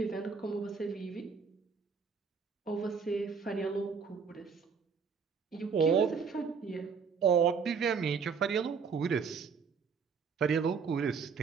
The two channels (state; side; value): quieter; left; 5.8 dB